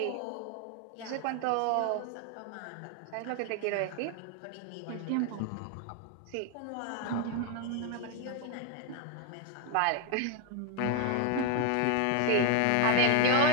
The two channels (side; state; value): both; different; correlation 0.01